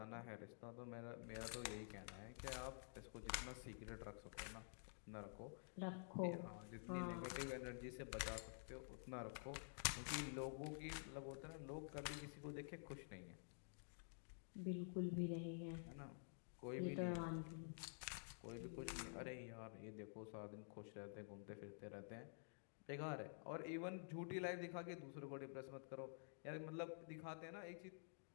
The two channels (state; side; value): silent; right; digital silence